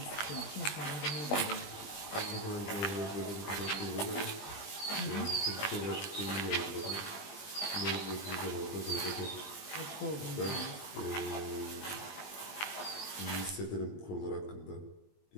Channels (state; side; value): late; right; 20 ms